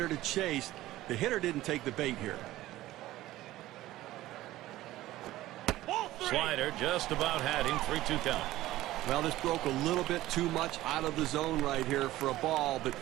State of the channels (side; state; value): left; quieter; 15.9 dB